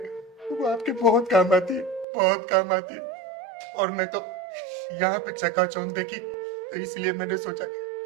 वो आपके बहुत काम आती है, बहुत काम आती है। और मैं तो यहाँ पे चकाचौंध देखी तो इसलिए मैंने सोचा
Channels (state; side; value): drops out; left; at 2.1 s